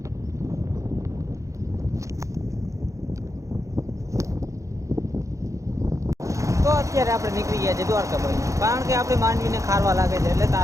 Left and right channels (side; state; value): left; late; 0.15 ms